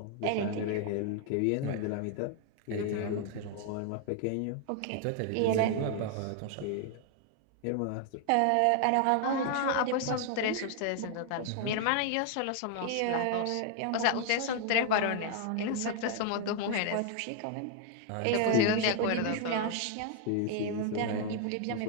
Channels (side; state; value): both; different; correlation 0.00